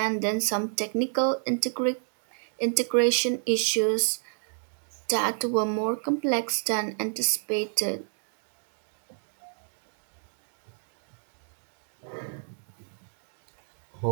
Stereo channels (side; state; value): left; silent; digital silence